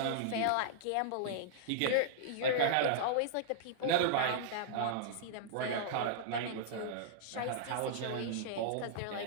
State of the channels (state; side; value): different; both; correlation -0.02